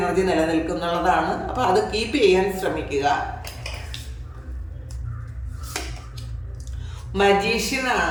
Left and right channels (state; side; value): identical; both; correlation 1.00